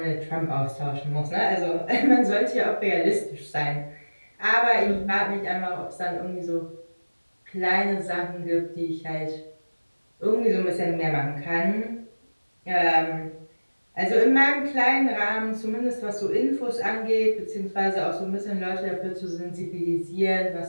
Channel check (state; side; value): inverted; both; correlation -1.00